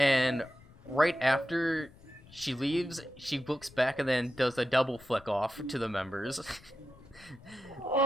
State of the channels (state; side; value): noise; left; rumble, 24 dB below the sound